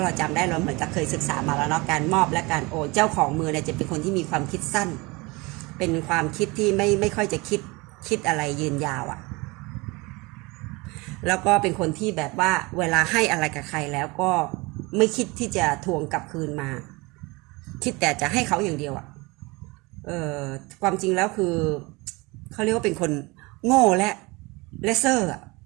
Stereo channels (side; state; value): left; quieter; 24.9 dB